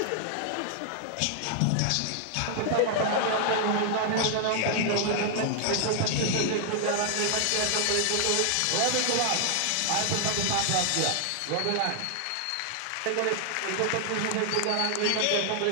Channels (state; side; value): different; both; correlation -0.01